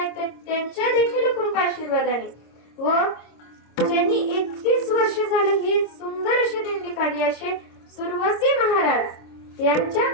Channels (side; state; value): right; late; 26 ms